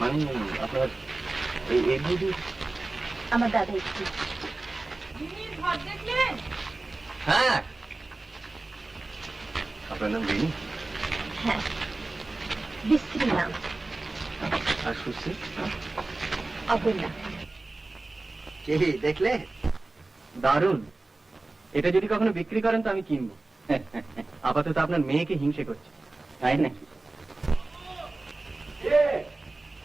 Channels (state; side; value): quieter; left; 3.1 dB